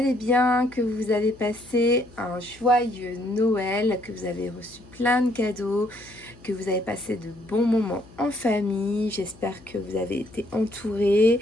bien, que vous avez passé un joyeux Noël, que vous avez reçu plein de cadeaux, que vous avez passé de bons moments en famille. J'espère que vous avez été entourés.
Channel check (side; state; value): left; noise; hum, 23 dB below the sound